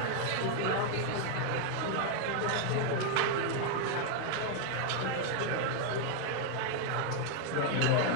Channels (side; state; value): both; different; correlation 0.00